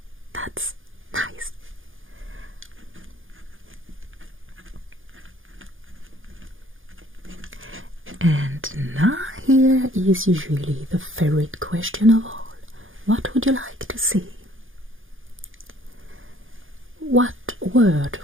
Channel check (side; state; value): left; late; 0.58 ms